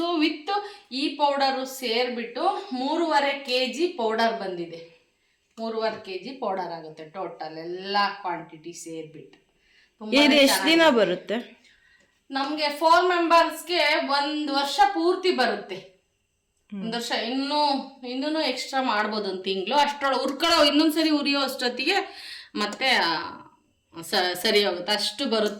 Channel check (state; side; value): identical; both; correlation 1.00